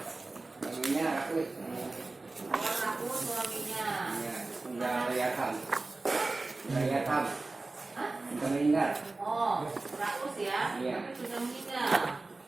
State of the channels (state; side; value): quieter; left; 3.3 dB